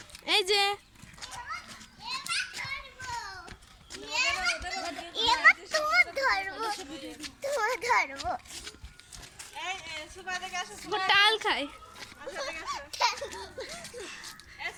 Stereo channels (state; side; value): identical; both; correlation 1.00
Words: এই যে ও টাল খায়।